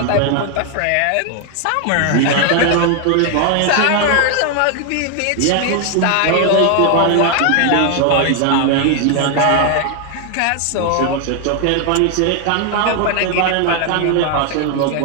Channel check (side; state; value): both; different; correlation 0.00